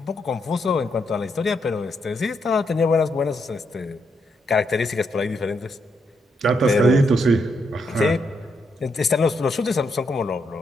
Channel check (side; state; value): both; normal; correlation 0.79